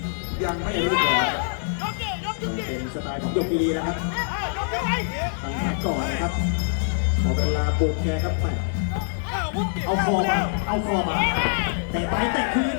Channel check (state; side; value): silent; right; 59 dB below the other